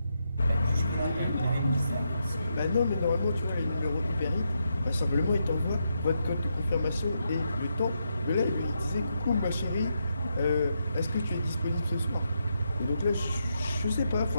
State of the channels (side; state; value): both; inverted; correlation -0.82